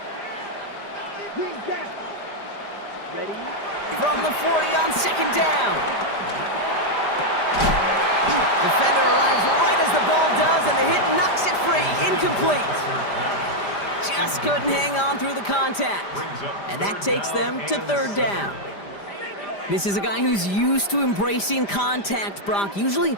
Green gap. Ready. From the 40 on second down. Defender arrives right as the ball does, and the hit knocks it free. Incomplete. Just couldn't hang on through the contact. And that takes them to third down. This is a guy who's used to embracing contact, Brock. Usually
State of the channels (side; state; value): right; late; 5.0 ms